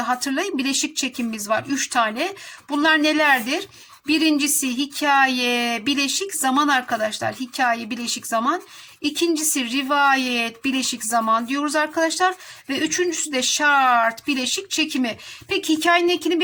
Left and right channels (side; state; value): both; identical; correlation 1.00